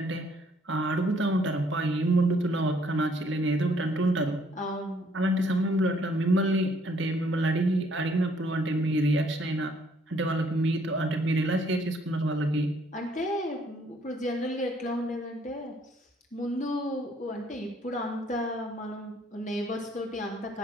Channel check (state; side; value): normal; both; correlation 0.65